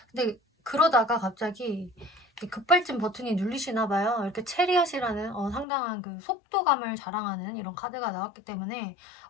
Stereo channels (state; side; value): drops out; right; at 5.7 s